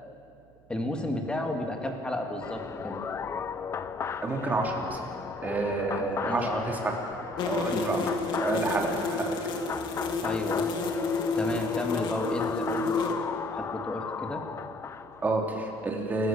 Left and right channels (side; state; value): right; noise; hum, 28 dB below the sound